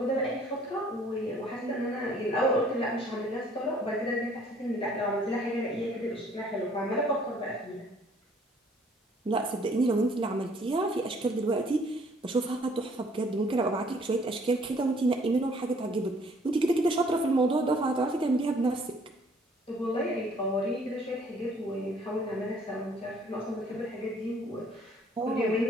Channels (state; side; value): normal; both; correlation 0.59